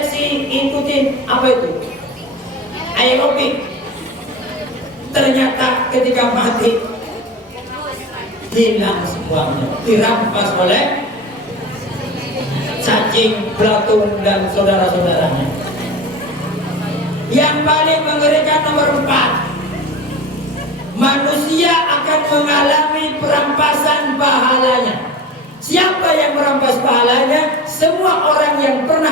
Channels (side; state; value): both; normal; correlation 0.32